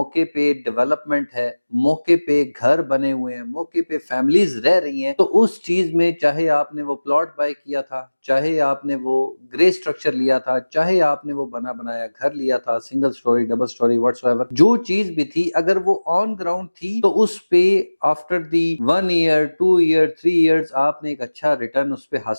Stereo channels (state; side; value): inverted; both; correlation -1.00